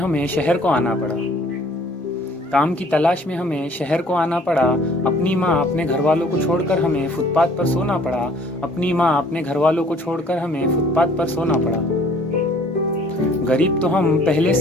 शहर को आना पड़ा। काम की तलाश में हमें शहर को आना पड़ा। अपनी माँ अपने घर वालों को छोड़कर हमें फुटपाथ पर सोना पड़ा। अपनी माँ अपने घर वालों को छोड़कर हमें फुटपाथ पर सोना पड़ा। गरीब तो हम पहले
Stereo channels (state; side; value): normal; both; correlation 0.56